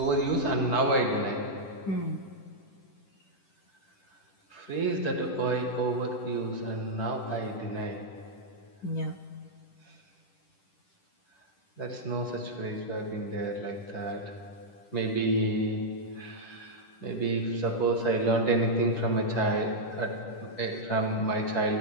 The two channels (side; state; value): right; late; 10 ms